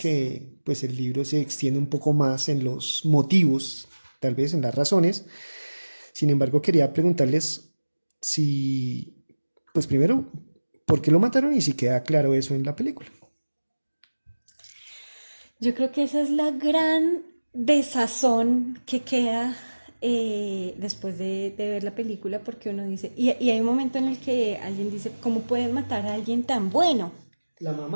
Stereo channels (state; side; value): inverted; both; correlation -1.00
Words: pues el libro se extiende un poco más en los motivos, tal vez en las razones. Sin embargo, quería preguntarles si, pues primero, ¿por qué lo mataron y si queda claro eso en la película? Yo creo que esa es la gran desazón que queda después de ver la película, porque uno dice, y hay un momento en el que alguien dice, ¿cómo pueden matar a alguien tan bueno? La